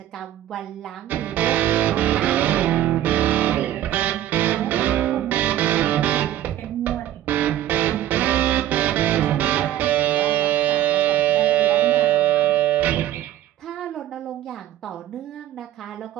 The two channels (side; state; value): left; quieter; 12.7 dB